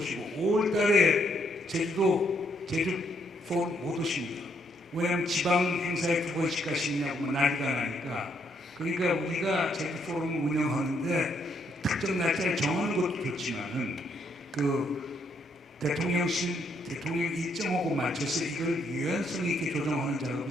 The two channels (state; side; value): normal; both; correlation 0.73